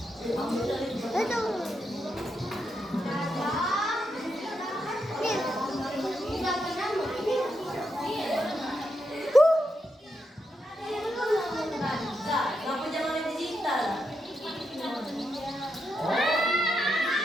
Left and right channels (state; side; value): normal; both; correlation 0.83